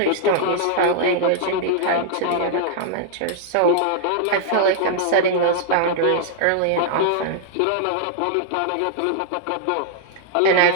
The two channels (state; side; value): different; both; correlation -0.01